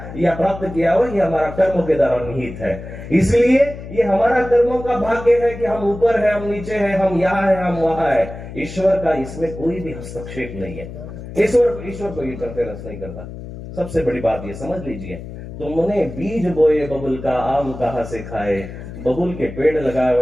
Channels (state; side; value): noise; left; hum, 12 dB below the sound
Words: या प्राप्त किया हुआ, ये हमारा कर्मों के द्वारा निहित है। इसलिए ये हमारा कर्मों का भाग्य है कि हम ऊपर है, हम नीचे है, हम यहाँ है, हम वहां है। ईश्वर का इसमें कोई भी हस्तक्षेप नहीं है। ईश्वर को इंटरफेरेंस नहीं करता। सबसे बड़ी बात ये समझ लीजिए, तुमने बीज बोए बबुल का, आम कहां से खाए। बबुल के पेड़ लगाए